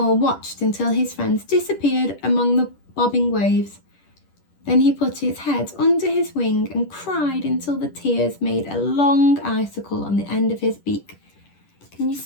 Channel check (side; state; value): right; late; 10 ms